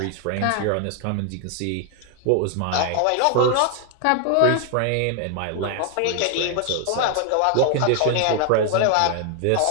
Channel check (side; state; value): both; different; correlation 0.00